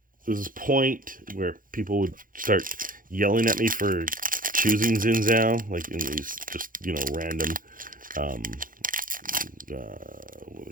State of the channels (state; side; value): late; left; 0.40 ms